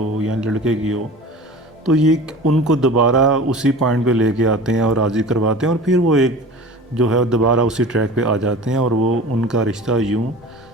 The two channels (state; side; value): normal; both; correlation 0.38